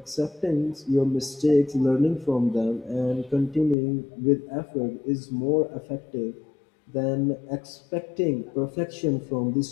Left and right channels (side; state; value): right; drops out; at 3.8 s